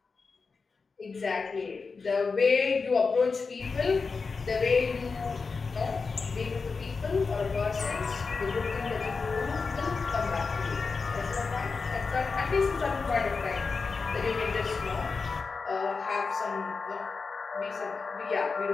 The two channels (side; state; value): right; quieter; 4.6 dB